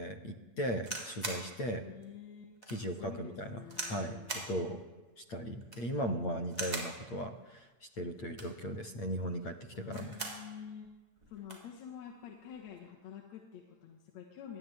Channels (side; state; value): right; late; 8.7 ms